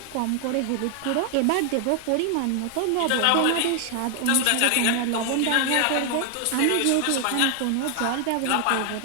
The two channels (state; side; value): different; both; correlation 0.00